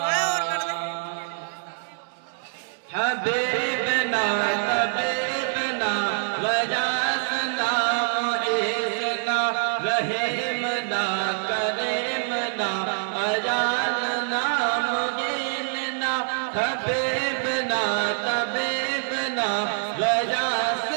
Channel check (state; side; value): silent; left; 62 dB below the other